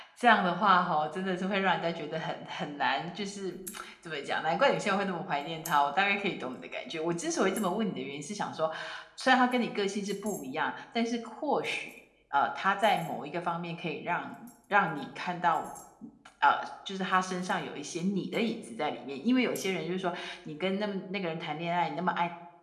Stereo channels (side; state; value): both; identical; correlation 1.00